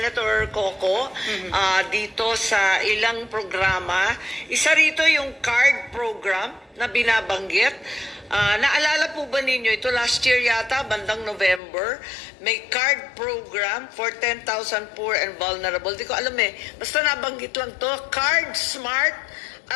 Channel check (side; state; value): right; drops out; at 11.6 s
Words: Coco dito sa ilang programa. Isa rito yung card program na binabanggit. Naalala po ba ninyo, ito last year yata, bandang November, may card program for 10,000 poor and vulnerable. Di ko alam basta nabanggit lang to, Card Smart